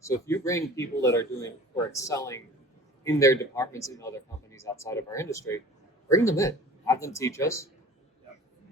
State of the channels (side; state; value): both; normal; correlation 0.44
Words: if you bring people that are doing or excelling in their departments in other companies outside of our industry, bring them in, have them teach us.